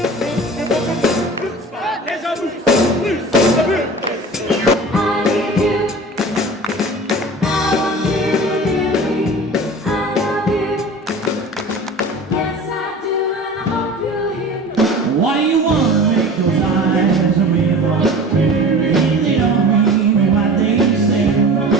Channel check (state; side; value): normal; both; correlation 0.38